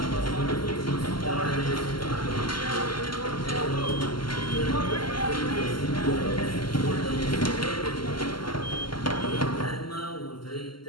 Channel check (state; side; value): late; right; 0.72 ms